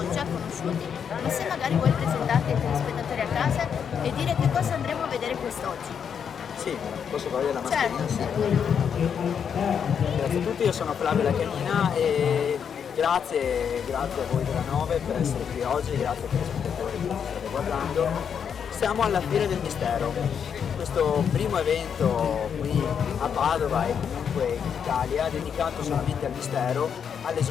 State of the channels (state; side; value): quieter; right; 7.5 dB